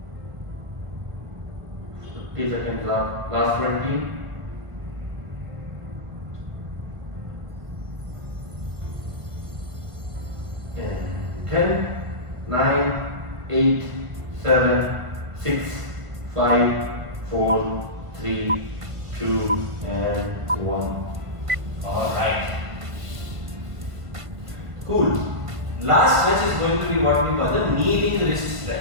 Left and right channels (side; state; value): left; late; 1.5 ms